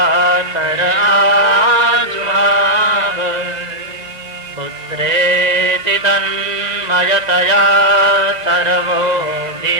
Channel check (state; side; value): late; left; 1.9 ms